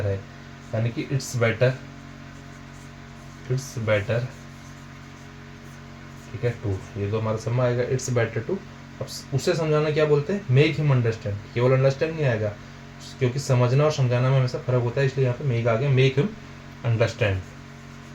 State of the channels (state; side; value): identical; both; correlation 1.00